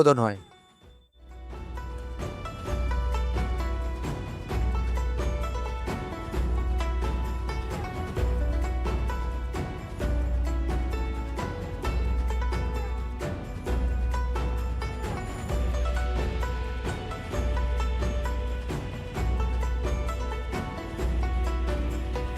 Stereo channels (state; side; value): identical; both; correlation 1.00